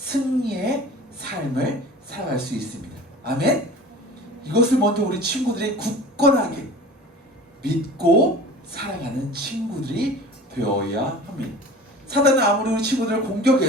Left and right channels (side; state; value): both; normal; correlation 0.40